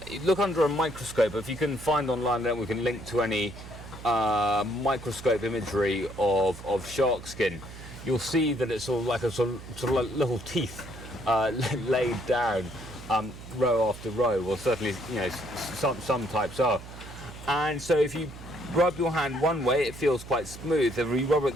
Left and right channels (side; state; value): right; noise; hum, 14 dB below the sound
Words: under a microscope. If you can find online, then we can link to any microscope imagery of shark skin. You'll see that it's sort of like little teeth laid down row after row. Well, certainly, some types are. And so if you rub your hand one way, it feels quite smooth. If you rub it